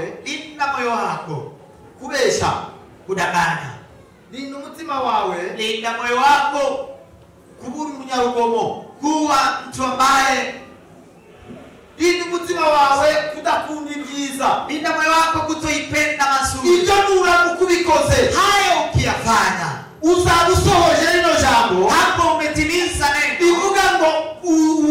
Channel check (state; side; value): identical; both; correlation 1.00